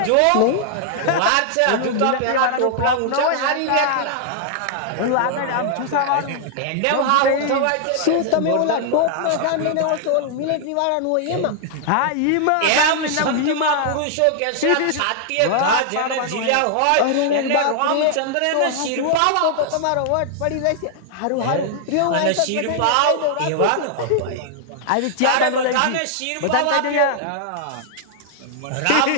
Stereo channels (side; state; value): both; different; correlation 0.00